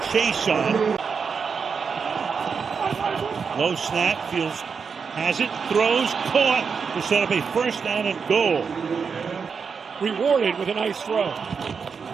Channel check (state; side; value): quieter; left; 5.8 dB